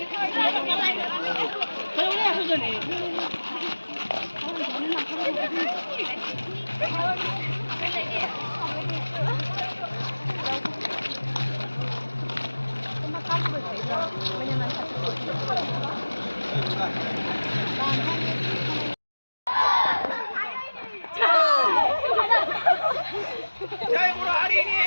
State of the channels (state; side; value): inverted; both; correlation -1.00